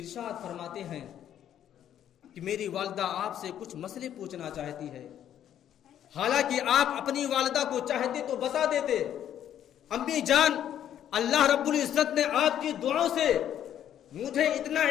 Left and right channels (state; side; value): quieter; right; 10.4 dB